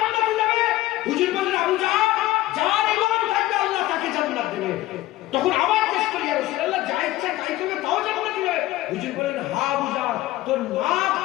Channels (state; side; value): quieter; right; 16.4 dB